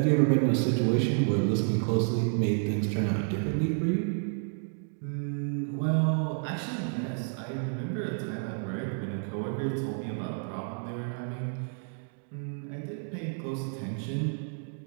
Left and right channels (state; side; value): silent; left; 57 dB below the other